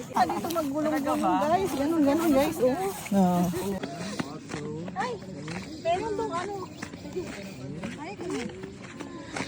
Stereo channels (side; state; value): both; identical; correlation 1.00